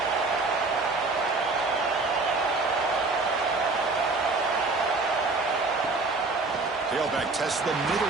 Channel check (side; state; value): left; quieter; 3.6 dB